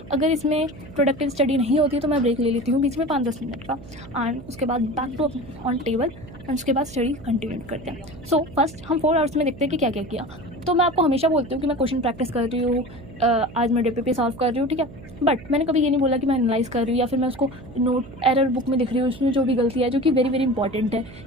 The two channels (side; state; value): right; noise; hum, 17 dB below the sound